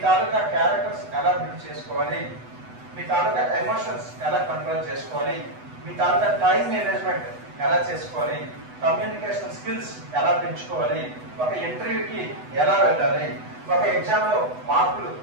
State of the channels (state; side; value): late; left; 8.1 ms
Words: తాలూకా క్యారెక్టర్స్ ఎలా బిల్డ్ చేసుకోవాలి, మీ తాలూకా ఎమోషన్స్ ఎలా కంట్రోల్ చేసుకోవాలి, మీ తాలూకా టైం మేనేజ్మెంట్ ఎలా చేసుకోవాలి, కమ్యూనికేషన్ స్కిల్స్ ఎలా పెంచుకోవాలి, ఒక ఇంటర్వ్యూకి ఎలా వెళ్ళాలి, ఒక ఎగ్జామ్ లో మార్కులు